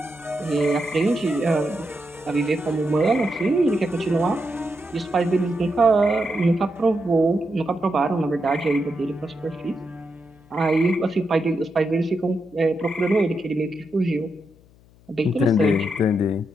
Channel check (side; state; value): left; noise; hum, 28 dB below the sound